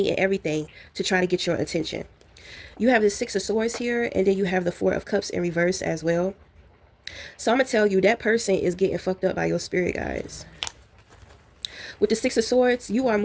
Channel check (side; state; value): both; identical; correlation 1.00